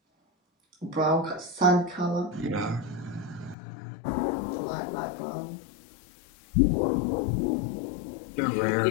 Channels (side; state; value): right; drops out; at 3.6 s